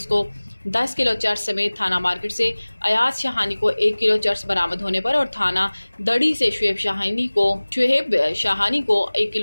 को 10 किलो चर्स समेत थाना मार्केट से अयाज शाहानी को 1 किलो चर्स बरामद होने पर और थाना दड़ी से शुएब शाहानी को 1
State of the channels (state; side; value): inverted; both; correlation -1.00